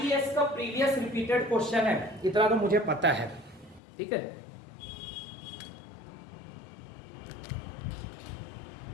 का प्रीवियस रिपीटेड क्वेश्चन है, इतना तो मुझे पता है। ठीक है,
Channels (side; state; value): right; drops out; at 3.8 s